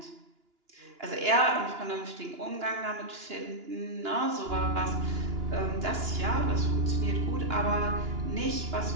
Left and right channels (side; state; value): left; late; 2.9 ms